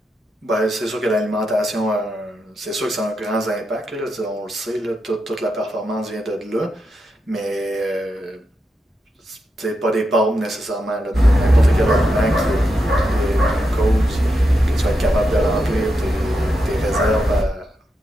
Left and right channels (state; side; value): normal; both; correlation 0.85